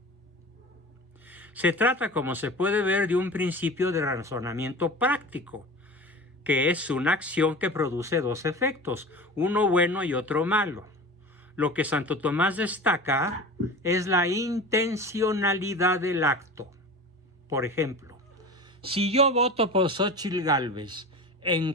Se trata, como se puede ver, de un principio de razonamiento práctico, que es una acción que produce dos efectos, uno bueno y otro malo. Lo que Santo Tomás destaca es la intencionalidad del acto. Por ejemplo, si yo voto por Xóchitl Gálvez en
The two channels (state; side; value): normal; both; correlation 0.34